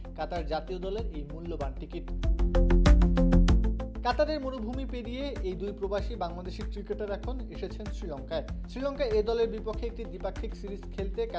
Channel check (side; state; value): both; identical; correlation 1.00